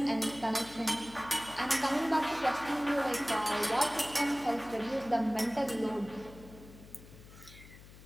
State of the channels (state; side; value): noise; left; hum, 19 dB below the sound